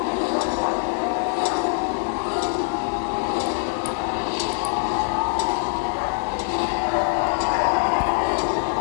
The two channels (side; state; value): right; silent; 62 dB below the other